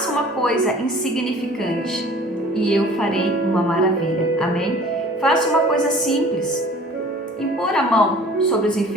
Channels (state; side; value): normal; both; correlation 0.48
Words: uma coisa insignificante e eu farei uma maravilha, amém? Faça uma coisa simples. Impor a mão sobre os